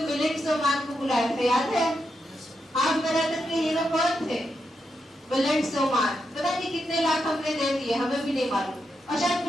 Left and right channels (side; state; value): both; normal; correlation 0.85